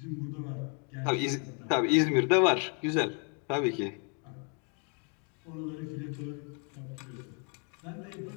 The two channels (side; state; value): right; quieter; 38.1 dB